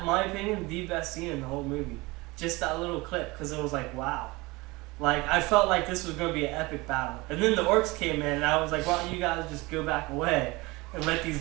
my opinion, the best scene in the whole movie. Just that little clip, because it was like, wow. Like, I felt like this was going to be an epic battle. And then the orcs came in, and I was like, why don't you guys just go back away and let these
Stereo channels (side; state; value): left; quieter; 23.1 dB